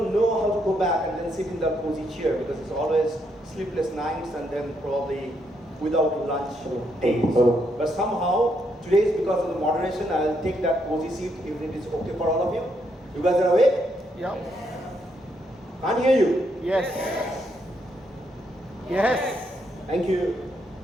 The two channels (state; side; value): normal; both; correlation 0.76